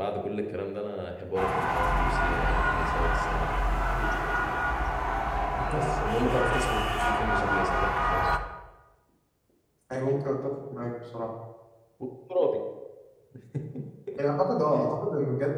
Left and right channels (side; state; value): both; identical; correlation 1.00